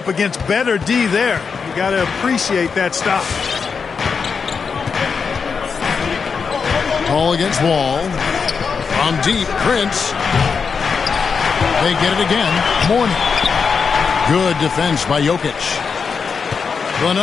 against better D there. You got to appreciate that stop. Ball against Wall. From deep, Prince. They get it again. Mourning. Good defense by Jokic. The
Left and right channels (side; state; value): right; quieter; 5.7 dB